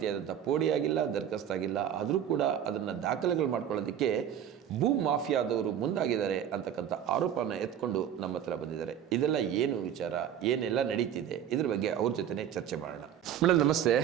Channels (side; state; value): left; quieter; 9.6 dB